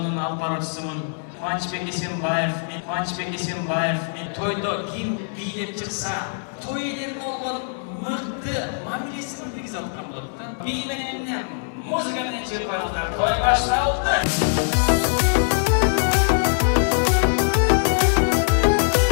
алып баруучусумун. Кубанычбек Эсенбаев, мен тойдо ким бийлеп чыкса, той элерин болгон мыкты мамилесин киргизе аткан болот да. Би менен эмне музыка менен чыгып коюңуздар. Той башталды.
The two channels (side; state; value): right; silent; 64 dB below the other